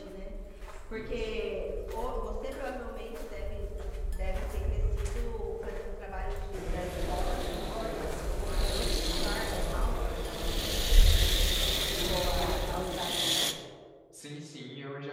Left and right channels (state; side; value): identical; both; correlation 1.00